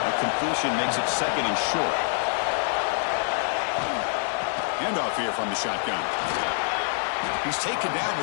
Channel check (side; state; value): right; silent; 61 dB below the other